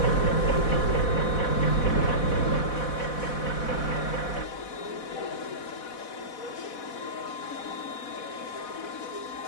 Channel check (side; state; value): right; late; 4.1 ms